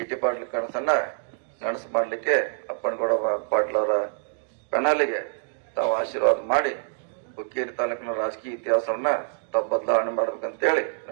ಪಾಟೀಲ್ ಕನಸನ್ನ ನನಸು ಮಾಡ್ಲಿಕ್ಕೆ ಅಪ್ಪನಗೌಡ ಪಾಟೀಲ್ ಅವರ ಕನಲಿಗೆ ತಾವು ಆಶೀರ್ವಾದ ಮಾಡಿ ಹುಕ್ಕೇರಿ ತಾಲೂಕಿನ ರಾಜಕೀಯ ಇತಿಹಾಸವನ್ನ ತಾವು ಬದಲಾವಣೆ ಮಾಡ್ಬೇಕಂತೇಳಿ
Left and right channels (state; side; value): silent; left; digital silence